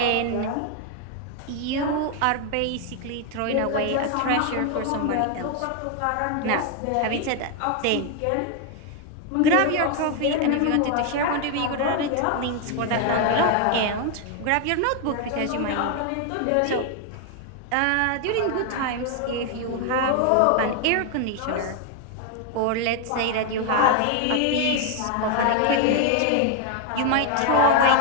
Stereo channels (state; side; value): different; both; correlation 0.00